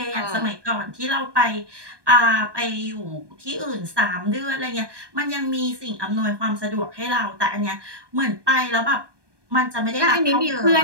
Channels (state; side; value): late; left; 1.2 ms